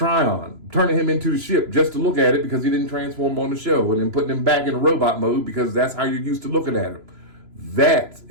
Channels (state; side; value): late; left; 3.0 ms